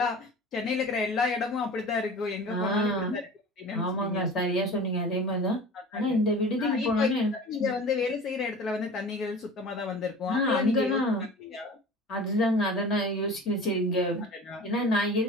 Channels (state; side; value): normal; both; correlation 0.39